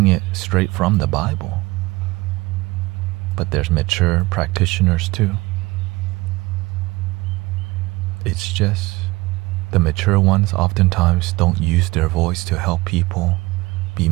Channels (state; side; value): quieter; left; 21.4 dB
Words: it straight from the Bible. But there's mature practitioners too. It's just the mature ones oftentimes don't use their voice to help people be